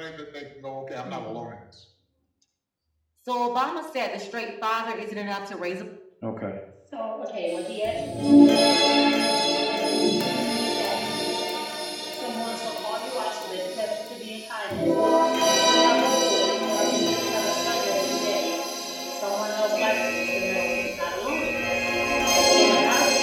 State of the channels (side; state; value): both; identical; correlation 1.00